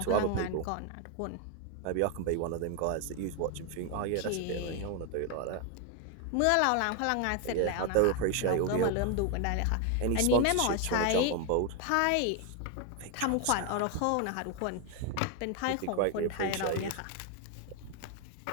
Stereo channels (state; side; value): different; both; correlation 0.01